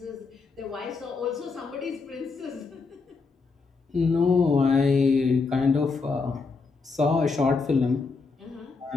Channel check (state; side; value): quieter; right; 4.4 dB